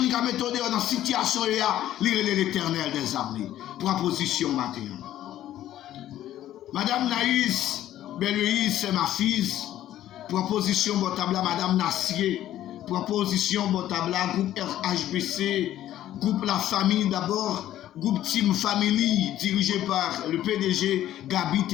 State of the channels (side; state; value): right; quieter; 12.7 dB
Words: qui a méthode dans la situation là. L'Éternel des armées. Proposition matin. Madame Naïs, Belle-Louise, c'est ma fille. Proposition Botabla, Madame Nassier. Proposition Botabla, groupe RHBC. Groupe La Famille d'abord. Groupe Team Family, dirigé par le PDG Gabi